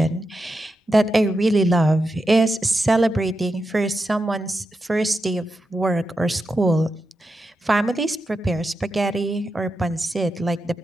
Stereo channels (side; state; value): both; normal; correlation 0.88